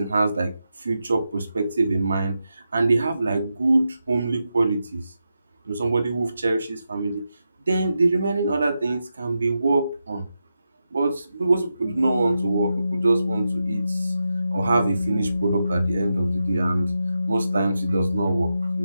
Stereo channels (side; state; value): both; inverted; correlation -0.88